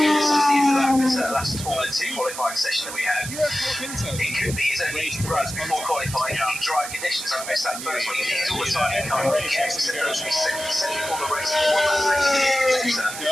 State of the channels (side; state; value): right; noise; hiss, 8 dB below the sound